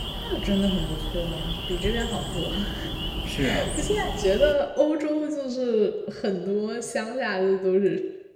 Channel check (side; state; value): both; identical; correlation 1.00